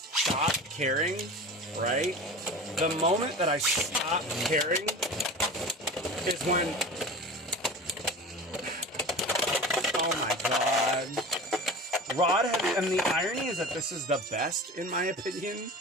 caring, right? The moment that I stop caring is when... Oh my god. Rod has... And the irony is that this is the best, in my opinion.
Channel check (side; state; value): both; normal; correlation 0.34